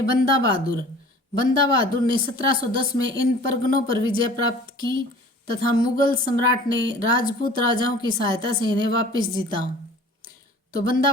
बंदा बहादुर ने 1710 में इन परगनों पर विजय प्राप्त की तथा मुगल सम्राट ने राजपूत राजाओं की सहायता से इन्हें वापस जीता। तो बंदा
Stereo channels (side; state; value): both; normal; correlation 0.46